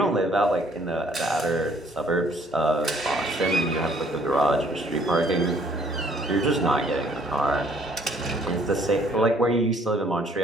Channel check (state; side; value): normal; both; correlation 0.61